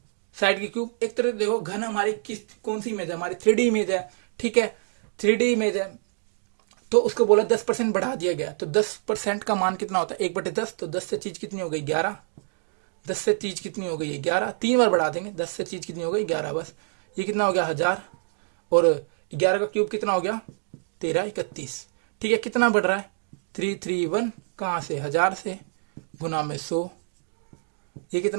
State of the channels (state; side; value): silent; left; digital silence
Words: एक तरह देखो घन हमारी कौन सी इमेज है, हमारी 3D इमेज है, ठीक है, 3D इमेज है, तो उसको बोला 10% बढ़ा दिया गया, तो 10% का मान कितना होता है 1/10, तो 10 से चीज कितनी हो गई 11, 10 से चीज कितनी हो गई 11, 3 बार बढ़ा देंगे, 10 से चीज कितनी हो गई 11, बस ये कितना हो गया 1000, और 11 का क्यूब कितना हो गया 1331, ठीक है, कितना बढ़ रहा है 331, कहां से 1000 से, गुना में 100, ये